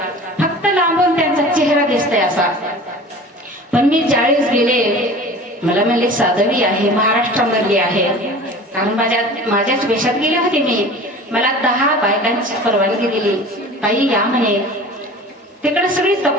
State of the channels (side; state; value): both; normal; correlation 0.40